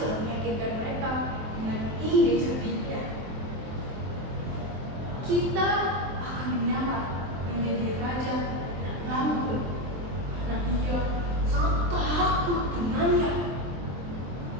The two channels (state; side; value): late; left; 23 ms